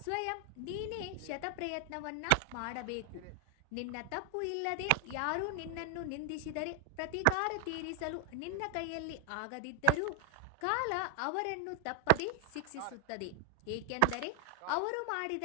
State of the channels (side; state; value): both; different; correlation 0.00